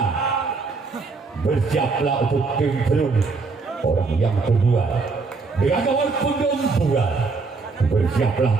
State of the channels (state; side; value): quieter; left; 4.3 dB